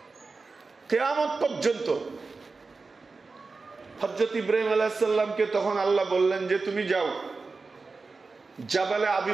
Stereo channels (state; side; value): quieter; left; 4.1 dB